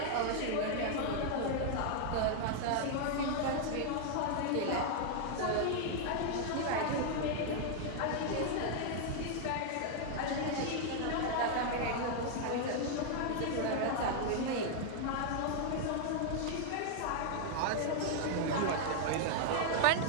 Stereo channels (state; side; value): different; both; correlation 0.00